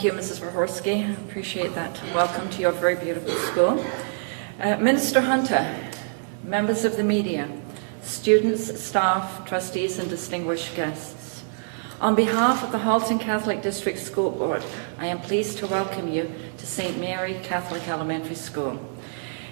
you, Mrs. Verhorski. I appreciate that. Welcome to your very beautiful school. Minister Hunter, members of the media, students, staff, trustees, and distinguished guests. On behalf of the Halton Catholic District School Board, I am pleased to welcome you to St. Mary Catholic Elementary School.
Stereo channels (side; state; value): left; silent; 59 dB below the other